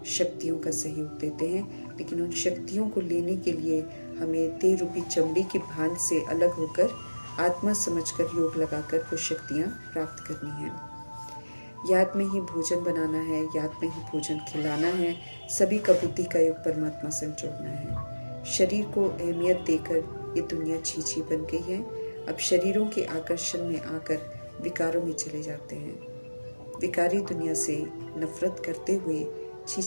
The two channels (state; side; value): inverted; both; correlation -1.00